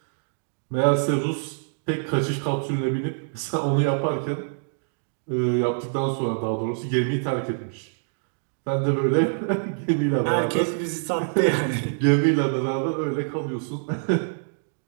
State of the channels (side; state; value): left; silent; digital silence